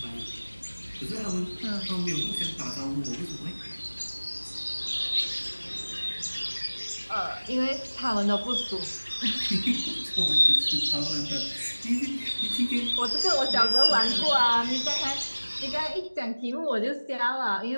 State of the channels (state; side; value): inverted; both; correlation -1.00